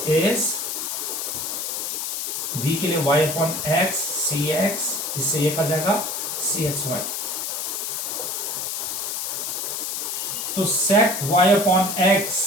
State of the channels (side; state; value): left; noise; hiss, 3 dB below the sound